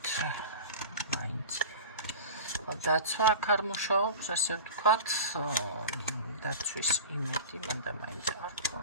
მაინც. დაცვა აქ არ მუშაობს, ასე ვთქვათ, დაცვის იმედი მანდა მაინც არ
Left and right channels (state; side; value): inverted; both; correlation -0.34